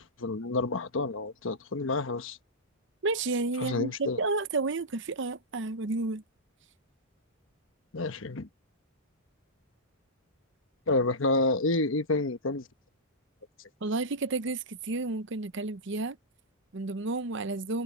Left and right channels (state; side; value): normal; both; correlation -0.12